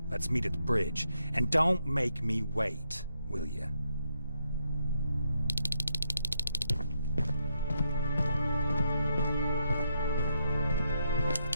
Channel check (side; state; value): both; inverted; correlation -0.79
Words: Let's meet at the bridge. And don't make me wait, will you?